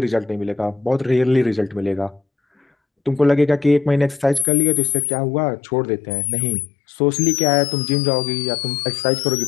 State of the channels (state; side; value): drops out; right; at 4.5 s